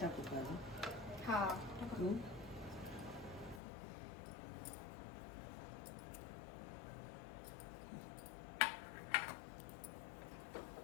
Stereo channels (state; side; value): drops out; right; at 3.6 s